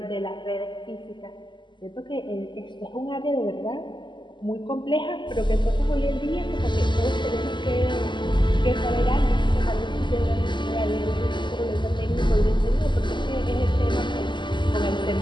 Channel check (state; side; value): late; right; 0.22 ms